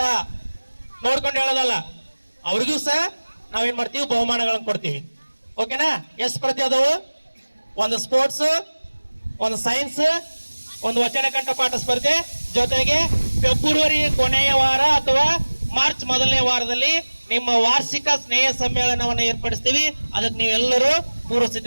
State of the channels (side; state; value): both; inverted; correlation -1.00